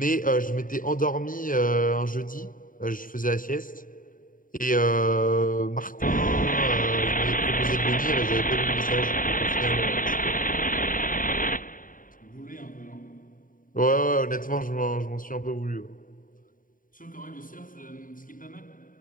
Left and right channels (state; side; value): late; right; 0.39 ms